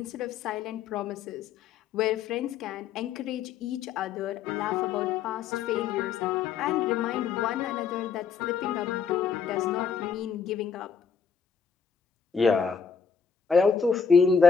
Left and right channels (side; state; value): right; quieter; 6.5 dB